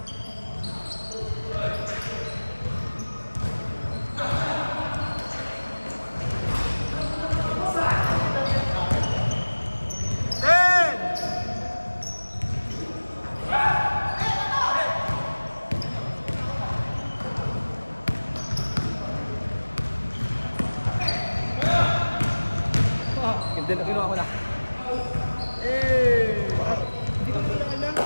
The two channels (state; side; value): inverted; both; correlation -1.00